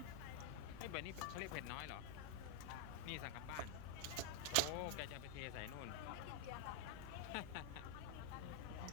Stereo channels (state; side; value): different; both; correlation 0.00